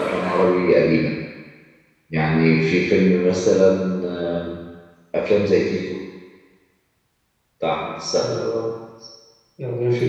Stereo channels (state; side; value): identical; both; correlation 1.00